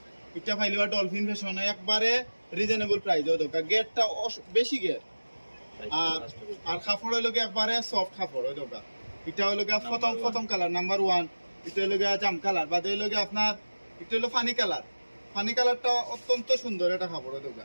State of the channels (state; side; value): inverted; both; correlation -1.00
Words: এটা ফাইলিবা ডলফিন ফ্যাশন, একবারে রিজনেবল প্রাইস। ওই দোকা গেটটা বেশি গেট, আর কাপড় হইল একবারে সফট কাপড়। ওই দোকা এটা হইল প্রথম কালার নাম্বার 1, এটা হইল জাম কালার, বাদে হইল আপনার এটা হইল ফানি কালার। ফানি কালারটা অত্যন্ত সুন্দর একটা কাপড়। ওই দোকা